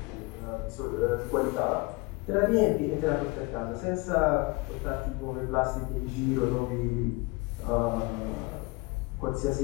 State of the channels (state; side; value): quieter; right; 25.5 dB